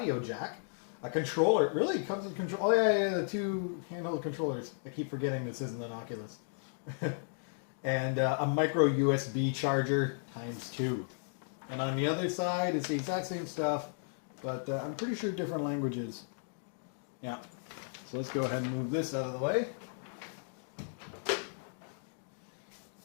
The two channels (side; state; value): right; silent; digital silence